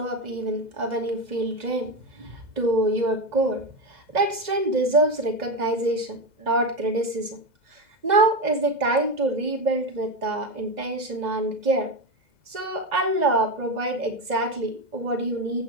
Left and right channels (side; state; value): left; late; 2.0 ms